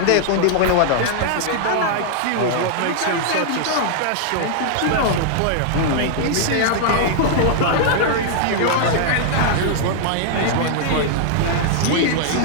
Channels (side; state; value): both; different; correlation -0.01